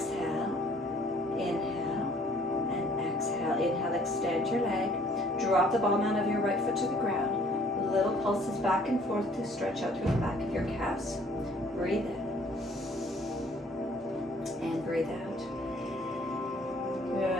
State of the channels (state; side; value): normal; both; correlation 0.58